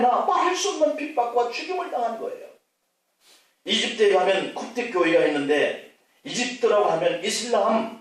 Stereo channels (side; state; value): both; identical; correlation 1.00